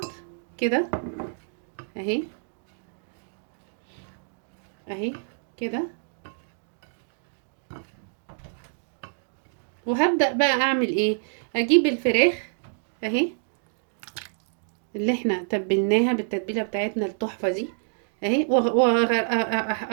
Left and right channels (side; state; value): left; silent; digital silence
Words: كده اهي اهي كده. وهبدأ بقى اعمل ايه، اجيب الفراخ اهي اللي احنا تبلناها بالتتبيله بتاعتنا التحفه دي اهي،